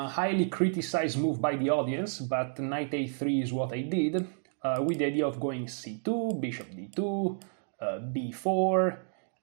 criticized move by the audience, but knight a3 is what I did, with the idea of going c2, bishop d2, b4,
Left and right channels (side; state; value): left; silent; digital silence